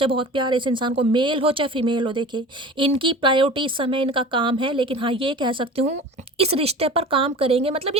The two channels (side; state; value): both; normal; correlation 0.38